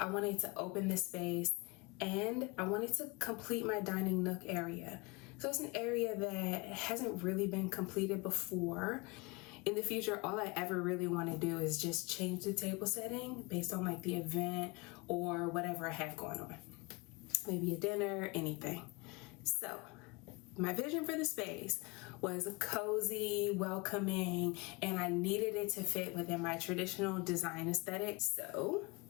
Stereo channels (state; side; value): quieter; right; 26.1 dB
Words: want it to open the space, and I want it to complete my dining nook area. So it's an area that hasn't really been completed before. In the future, all I ever really want to do is just change the table setting based on like the event or whatever I have going on. Maybe a dinner, anything. So my vision for the space was cozy, welcoming, and I needed it to fit within my traditional design aesthetic. So